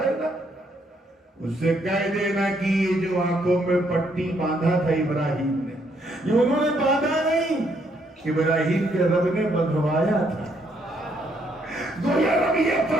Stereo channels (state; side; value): normal; both; correlation 0.72